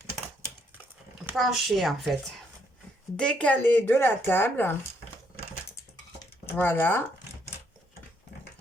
penché, en fait. Décalé de la table. Voilà.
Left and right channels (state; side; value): normal; both; correlation 0.72